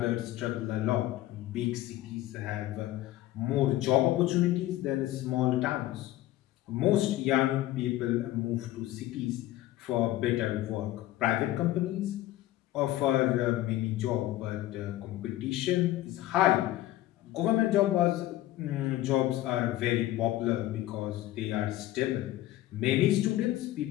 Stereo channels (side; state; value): right; quieter; 15.1 dB